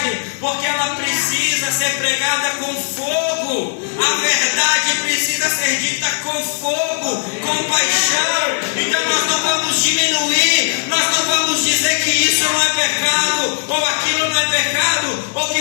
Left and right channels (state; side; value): silent; right; 66 dB below the other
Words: porque ela precisa ser pregada com fogo. A verdade precisa ser dita com fogo, com paixão. Então nós não vamos diminuir, nós não vamos dizer que isso não é pecado, ou aquilo não é pecado, ou